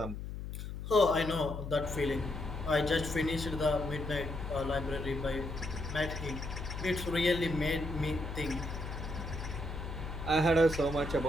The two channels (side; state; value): left; noise; hum, 7 dB below the sound